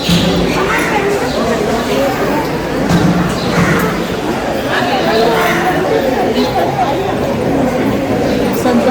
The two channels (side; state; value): both; identical; correlation 1.00